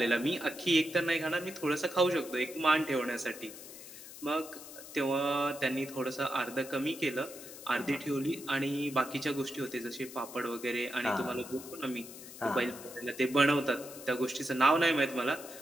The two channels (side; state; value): left; noise; hiss, 14 dB below the sound